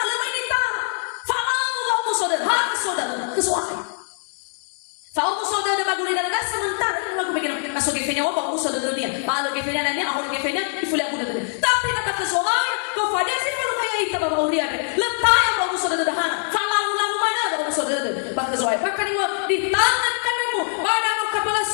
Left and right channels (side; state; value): right; silent; 63 dB below the other